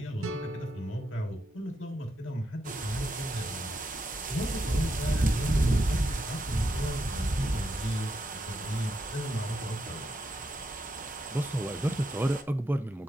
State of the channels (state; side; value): normal; both; correlation 0.82